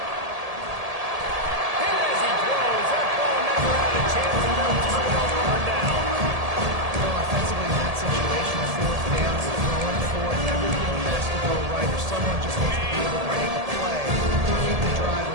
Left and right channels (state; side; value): late; left; 1.8 ms